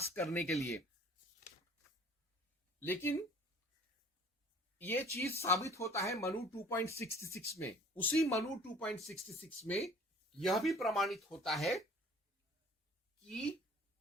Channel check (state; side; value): normal; both; correlation 0.51